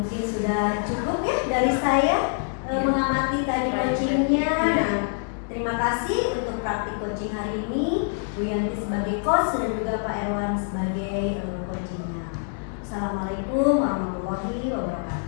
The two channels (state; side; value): silent; right; 61 dB below the other